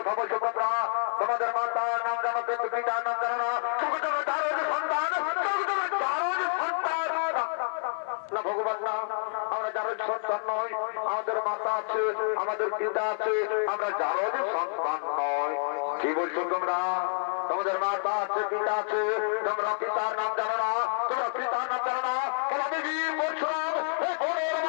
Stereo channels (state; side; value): silent; right; 56 dB below the other